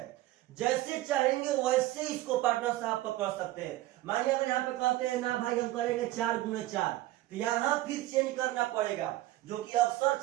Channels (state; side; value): quieter; left; 16.1 dB